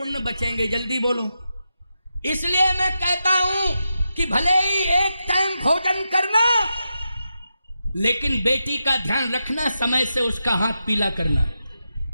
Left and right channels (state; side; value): inverted; both; correlation -0.87